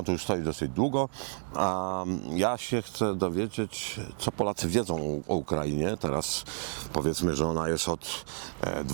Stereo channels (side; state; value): left; silent; 58 dB below the other